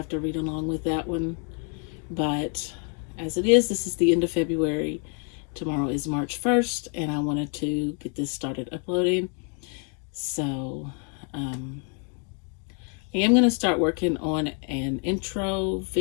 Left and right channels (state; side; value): quieter; right; 39.8 dB